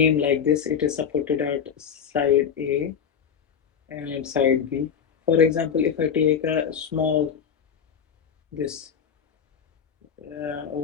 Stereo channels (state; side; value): quieter; right; 7.4 dB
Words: like this, it is supported at side A and side B. For example, if I take a small this